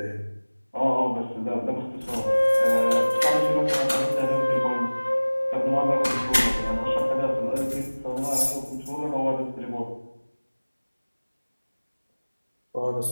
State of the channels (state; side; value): inverted; both; correlation -1.00